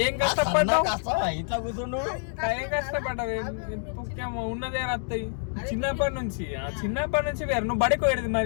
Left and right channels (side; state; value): right; silent; digital silence